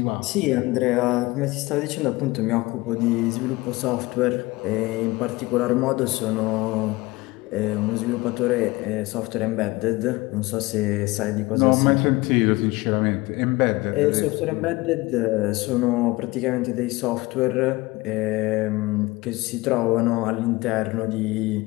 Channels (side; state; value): right; quieter; 21.5 dB